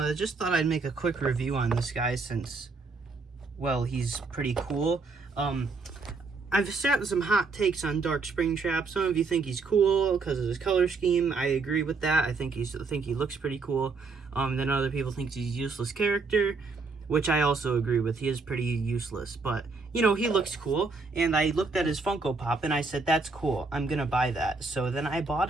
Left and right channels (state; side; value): quieter; left; 4.2 dB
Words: Just thought I'd make a quick review on this guy since, well, he's pretty cool. I've sat some hot takes on Dark Springtrap. Some of you think he's cool because of his color scheme. I agree with that. I think he looks pretty cool. Then other people think he's a useless character, which I also agree with. He is pretty useless, but you know, he looks cool. And I looked at his Funko Pop and I said, that's cool. I'm gonna buy that. So then I